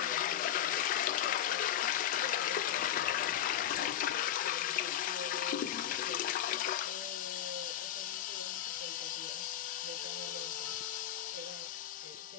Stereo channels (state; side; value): quieter; right; 11.1 dB